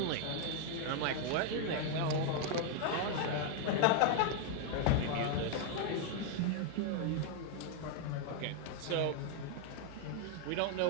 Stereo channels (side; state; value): both; different; correlation 0.00